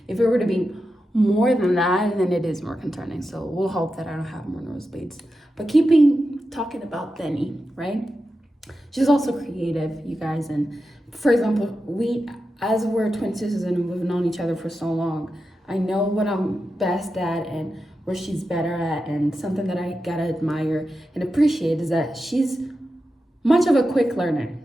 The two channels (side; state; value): both; normal; correlation 0.90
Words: if it were to be more than that, then it is more concerning. So we'll hope that I don't have more nosebleeds. But talking about Denny, right? She's also creative, you guys. And for example, as we're twin sisters and we've known each other for so long, I know what I'm best at and where she's better at. And something that I gotta admire and appreciate is that she's much of a quick learner.